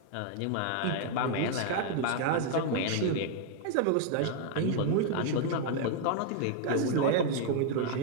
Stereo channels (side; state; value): both; different; correlation 0.00